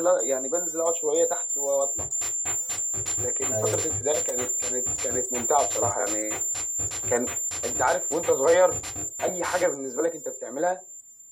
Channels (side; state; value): both; identical; correlation 1.00